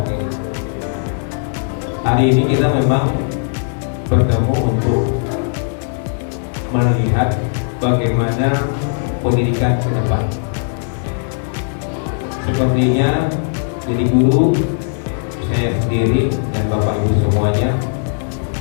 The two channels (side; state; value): right; silent; digital silence